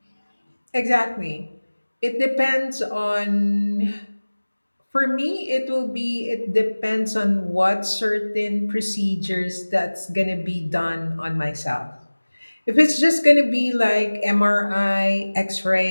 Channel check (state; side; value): inverted; both; correlation -1.00